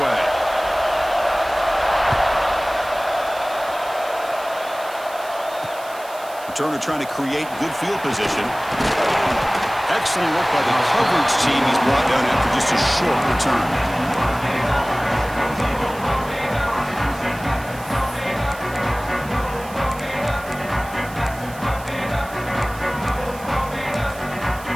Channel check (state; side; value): noise; right; hiss, 18 dB below the sound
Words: Returner trying to create good field position. Excellent work by the coverage team. He's brought down after just a short return.